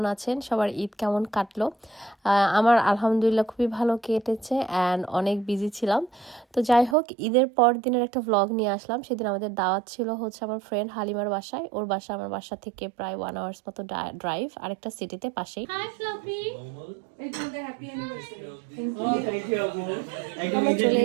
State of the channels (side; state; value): left; drops out; at 7.0 s